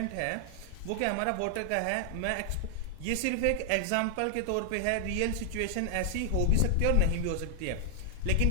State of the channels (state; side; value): different; both; correlation 0.00